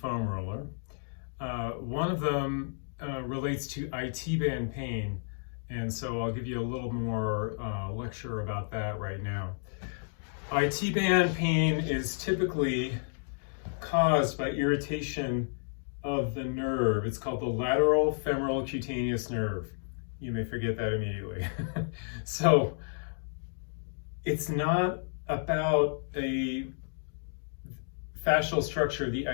roller. One of them relates to IT band pain, and so I'll give you a little more lecture about that right now. IT band pain is typically caused by irritation of the nerve. It's called the lateral femoral cutaneous nerve. You may forget that immediately. So it's not about a fascial structure, the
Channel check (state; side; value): silent; right; digital silence